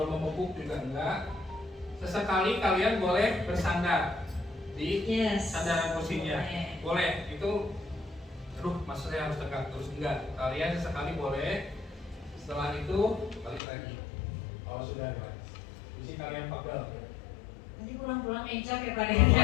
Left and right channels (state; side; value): drops out; right; at 13.6 s